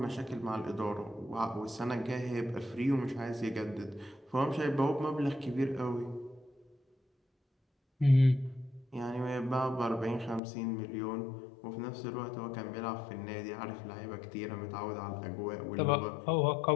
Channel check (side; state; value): right; drops out; at 10.4 s